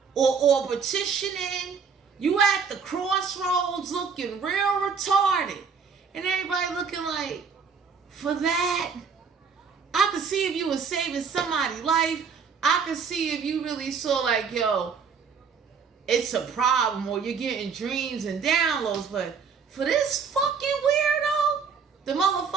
Or petitioning. You at the crossroads looking real retarded. And everybody looking like, for that? I could see if you were saving somebody's life. I could see if you really saw like, yo, it's a problem, or you're getting dreams and downloads. But for this fucking weirdo, the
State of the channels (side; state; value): left; quieter; 5.9 dB